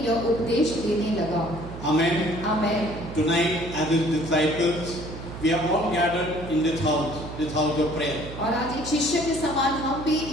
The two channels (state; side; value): noise; right; hum, 11 dB below the sound